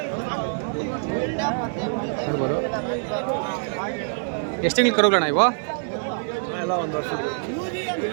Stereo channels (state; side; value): silent; left; 62 dB below the other